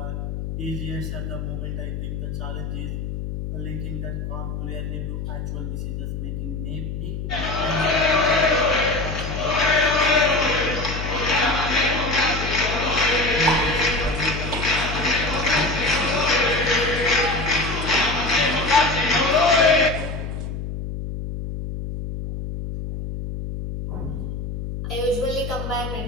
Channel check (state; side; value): noise; left; hum, 5 dB below the sound